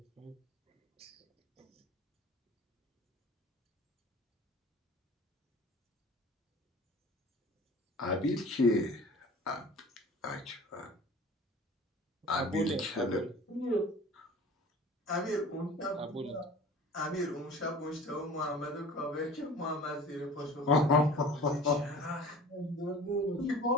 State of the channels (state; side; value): normal; both; correlation 0.42